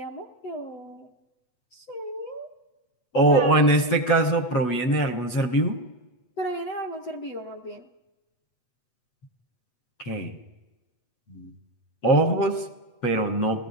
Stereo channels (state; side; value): late; right; 8.2 ms